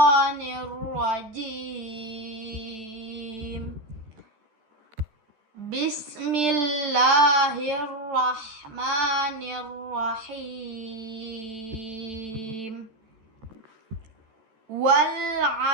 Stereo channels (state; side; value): late; left; 13 ms